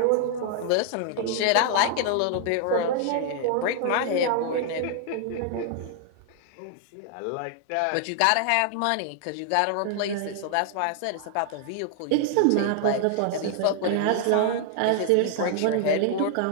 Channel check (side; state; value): both; different; correlation -0.01